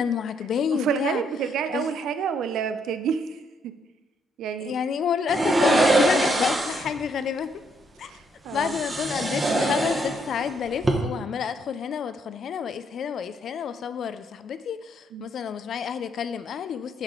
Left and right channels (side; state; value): both; normal; correlation 0.72